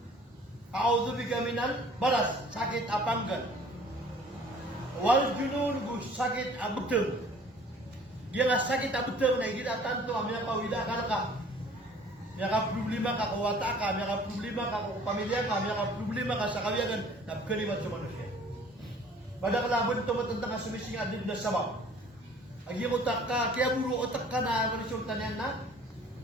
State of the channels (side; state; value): both; normal; correlation 0.52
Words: A'udzu bika minal maras sakit apanggal. Wal junun gu sakit abetul. Dia nga sakit abetul na kita tanto amya ka wida ka. May ka problema ka kawata ka, may ka problema ka kung pamilya ka, may ka problema ka sa kawiyagan na kalimat sa manusia. Pada kalaban ito matandang ka sumising adib na sabab. Agi mo tak ka, kaya buro otak ka na resulta niyan na